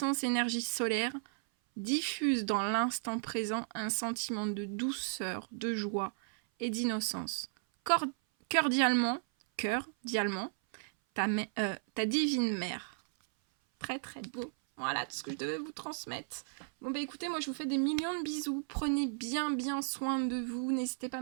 énergie solaire diffuse dans l'instant présent un sentiment de douceur, de joie et d'innocence. Cordialement, ta divine mère. Très très beau. Voilà tout ce que je devais vous transmettre. Bon bah écoutez, moi je vous fais des millions de bisous. Prenez bien soin de vous. N'hésitez pas à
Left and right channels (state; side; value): silent; left; 55 dB below the other